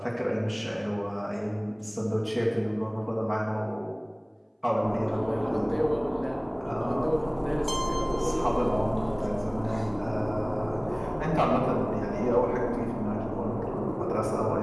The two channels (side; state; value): both; identical; correlation 1.00